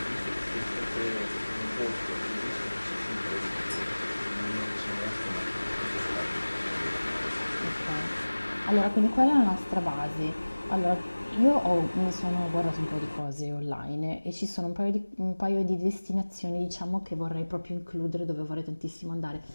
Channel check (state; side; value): inverted; both; correlation -1.00